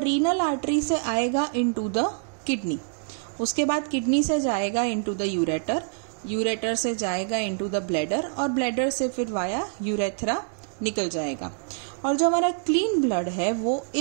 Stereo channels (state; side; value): silent; left; 61 dB below the other